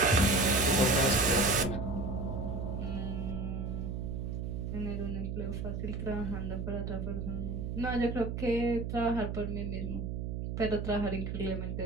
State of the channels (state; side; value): noise; right; hum, 3 dB below the sound